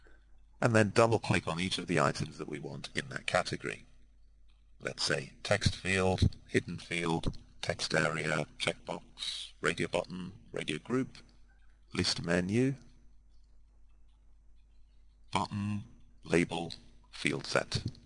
and then double-click on each of the items that we want in that category. Let's say text field, hidden field, text area, checkbox, radio button, radio group, list menu, button, label, field set.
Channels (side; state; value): both; identical; correlation 1.00